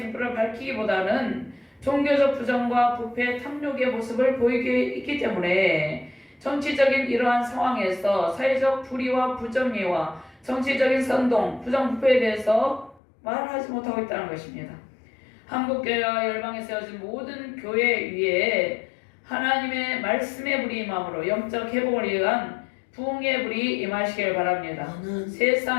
밝히기보다는 종교적 부정과 부패, 탐욕의 모습을 보이게 있기 때문에 정치적인 이러한 상황에서 사회적 불의와 부정의와 정치적인 선동, 부정부패에 대해서 말하지 못하고 있다는 것입니다. 한국교회와 열방에 세워진 모든 교회 위에 하나님의 말씀의 불이 임함으로 영적 회복을 위한 부흥의 불이 임하시길 바랍니다. 아멘.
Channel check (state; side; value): drops out; right; at 13.0 s